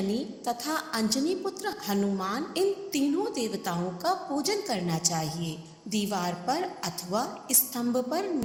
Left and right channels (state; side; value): identical; both; correlation 1.00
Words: तथा अंजनी पुत्र हनुमान, इन तीनों देवताओं का पूजन करना चाहिए। दीवार पर अथवा स्तंभ पर